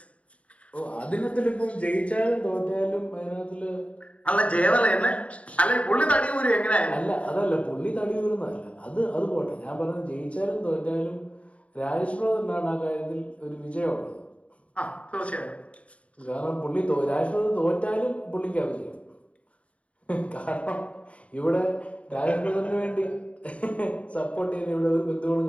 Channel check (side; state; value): right; late; 0.064 ms